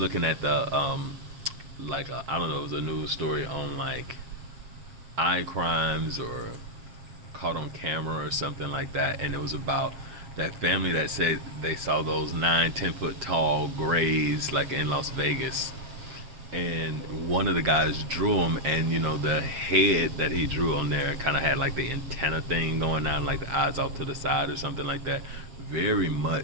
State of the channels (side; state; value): left; late; 7.5 ms